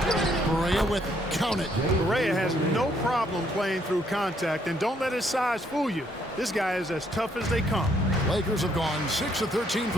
Barea with it. Count it. Barea has no problem playing through contact, and don't let his size fool you. This guy is as tough as they come. Lakers have gone 6 of 13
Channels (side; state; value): both; normal; correlation 0.70